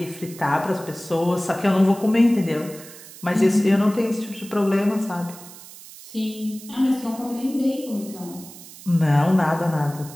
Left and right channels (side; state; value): right; noise; hiss, 17 dB below the sound